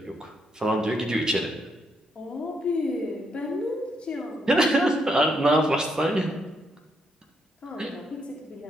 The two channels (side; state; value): both; normal; correlation 0.77